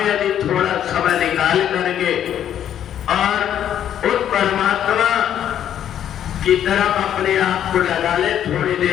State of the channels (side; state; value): right; quieter; 10.2 dB